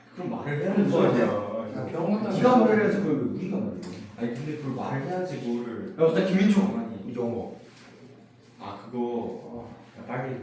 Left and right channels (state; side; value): identical; both; correlation 1.00